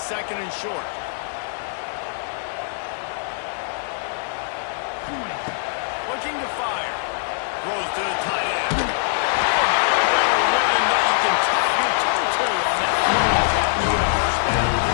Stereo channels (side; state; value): right; silent; digital silence